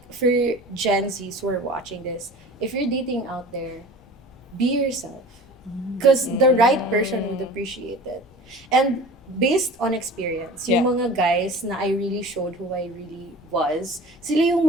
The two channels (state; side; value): normal; both; correlation 0.40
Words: for Gen Zs who are watching this, if you're dating out there, be yourself. Because the right person would appreciate it. And based on experience, yung mga guys na I really showed who I really was, sila yung